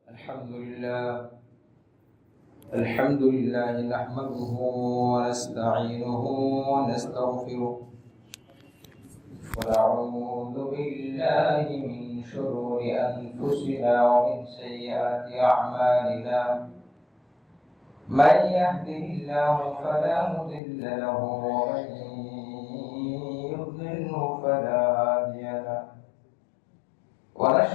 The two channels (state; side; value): drops out; right; at 20.6 s